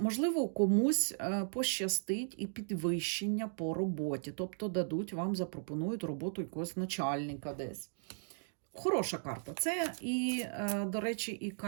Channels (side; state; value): left; silent; digital silence